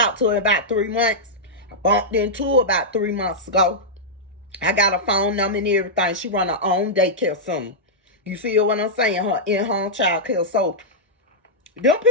to her in about 3 months. I bumped into her about 3 months ago. I got a phone number and everything. She run her own daycare center. You feel what I'm saying? Her in-home child care. So, them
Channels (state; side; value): normal; both; correlation -0.09